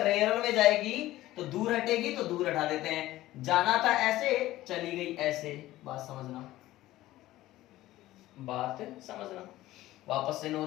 रेयरर में जाएगी तो दूर हटेगी, तो दूर हटा देते हैं। जाना था ऐसे, चली गई ऐसे। बात समझना, बात समझना। वापस से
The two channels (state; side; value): quieter; right; 15.9 dB